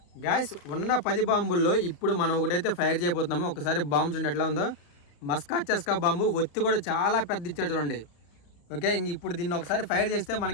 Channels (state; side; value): late; right; 34 ms